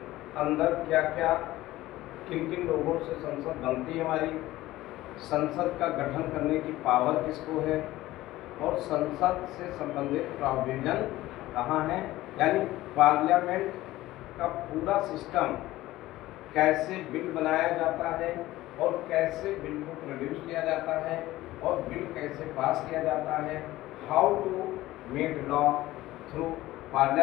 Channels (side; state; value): right; quieter; 16.7 dB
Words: अंदर क्या क्या किन किन लोगों से संसद बनती है हमारी, संसद का गठन करने की पावर किसको है और संसद से संबंधित प्रोविजन कहाँ है, यानी पार्लियामेंट का पूरा सिस्टम कैसे बिल बनाया जाता है और कैसे बिल को प्रोड्यूस किया जाता है और बिल कैसे पास किया जाता है, how to make law through